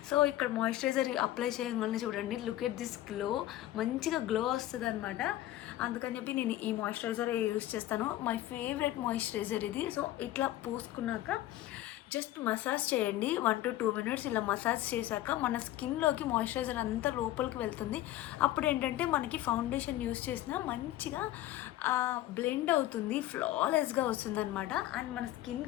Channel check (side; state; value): right; quieter; 14.4 dB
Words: సో ఇక్కడ మాయిశ్చరైజర్ అప్లై చేయగానే చూడండి, లుక్ ఎట్ దిస్ గ్లో, మంచిగా గ్లో వస్తుంది అనమాట. అందుకని చెప్పి నేను ఈ మాయిశ్చరైజర్ యూస్ చేస్తాను. మై ఫేవరెట్ మాయిశ్చరైజర్ ఇది. సో ఇట్లా పూసుకున్నాక జస్ట్ మసాజ్ చేయండి 1 to 2 minutes. ఇలా మసాజ్ చేశాక మన స్కిన్లోకి మాయిశ్చరైజర్ అంతా లోపలికి వెళ్తుంది. అప్పుడు ఏంటంటే మనకి ఫౌండేషన్ యూస్ చేసినా మంచిగా బ్లెండ్ అవుతుంది, ఫ్లాలెస్గా వస్తుంది అనమాట. అండ్ మన